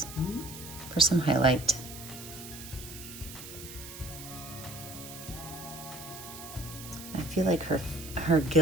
for some highlight. I feel like her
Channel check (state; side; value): noise; right; hiss, 13 dB below the sound